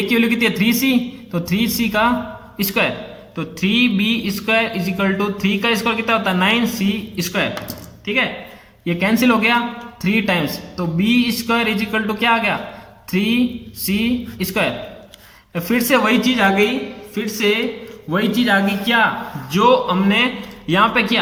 की वैल्यू कितनी है? 3c, तो 3c का स्क्वायर। तो 3b square is equal to 3 का स्क्वायर कितना होता है? 9c स्क्वायर, ठीक है। ये कैंसिल हो गया 3 टाइम्स, तो b square is equal to क्या आ गया? 3c square. फिर से वही चीज आ गई, क्या जो हमने यहाँ पे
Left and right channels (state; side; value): identical; both; correlation 1.00